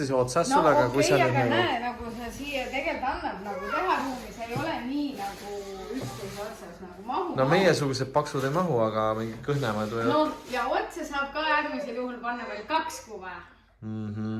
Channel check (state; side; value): identical; both; correlation 1.00